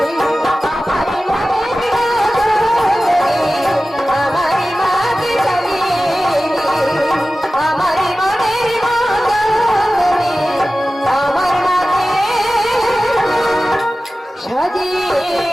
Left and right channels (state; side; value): normal; both; correlation 0.96